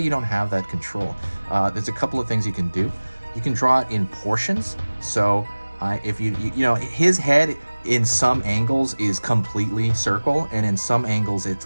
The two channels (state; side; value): inverted; both; correlation -1.00